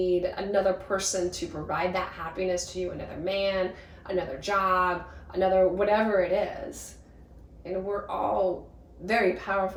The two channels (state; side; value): identical; both; correlation 1.00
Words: another person to provide that happiness to you, another man, another job, another whatever it is. And we're all very